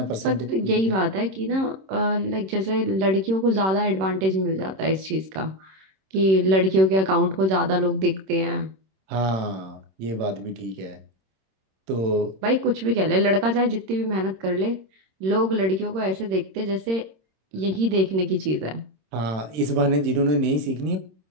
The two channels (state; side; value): late; left; 26 ms